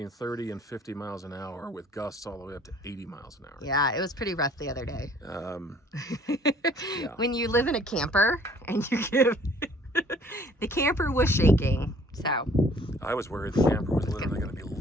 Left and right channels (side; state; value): both; normal; correlation 0.56